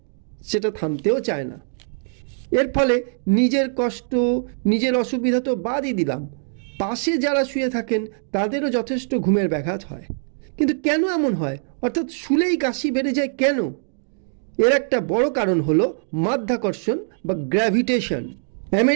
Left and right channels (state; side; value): silent; left; digital silence